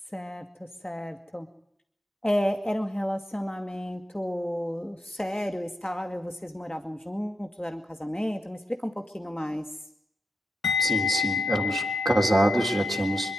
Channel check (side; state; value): both; normal; correlation 0.86